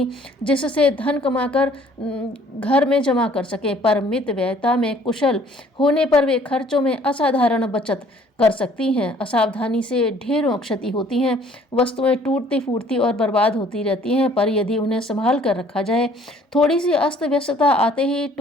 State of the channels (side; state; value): both; normal; correlation 0.57